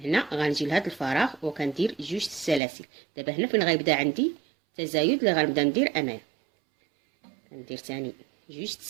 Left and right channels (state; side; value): drops out; left; at 2.6 s